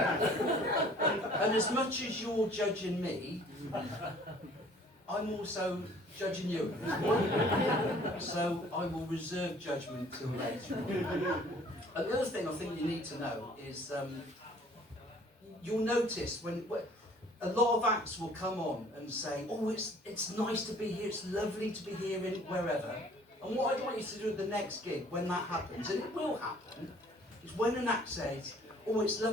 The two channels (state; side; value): normal; both; correlation 0.54